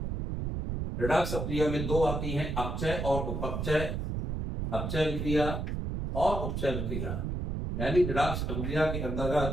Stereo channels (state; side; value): noise; right; rumble, 3 dB below the sound